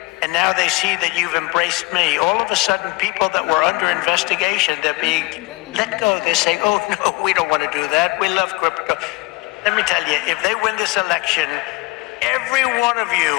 And now they see that you've embraced me. All of a sudden, people that were under investigation, they're being let go. They're saying, oh, no, we don't want to do that. We love crypto. Let me tell you, if they win this election, every one of you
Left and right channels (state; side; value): quieter; right; 23.7 dB